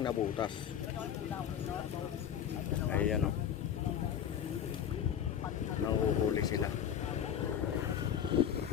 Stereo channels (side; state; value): right; quieter; 9.0 dB